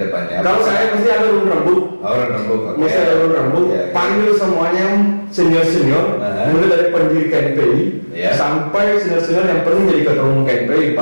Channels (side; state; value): both; inverted; correlation -1.00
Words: depannya? Kalau saya mesti ada urun rembuk, orang rembuk. mesti ada urun rembuk, Ya. panggil semuanya senior-senior, mulai dari pendiri KNPI Ya. sampai senior-senior yang pernah jadi ketua umum KNPI,